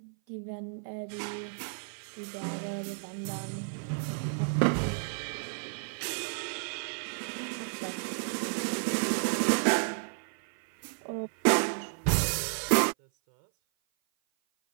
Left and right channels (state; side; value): silent; left; 56 dB below the other